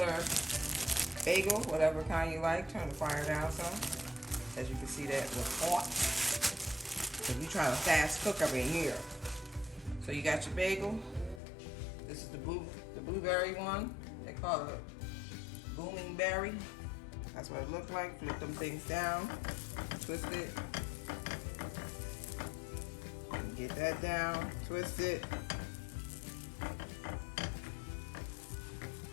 Bagel, whatever kind you like. Turn the fire down some. As you can see, that was hot. Because we trying to fast cook up in here. So you got your bagel. This is the blueberry one. They call it booming berry. That's what it looked like. Flip them things down. Twist it. And get that down. Twist it.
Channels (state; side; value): drops out; right; at 11.4 s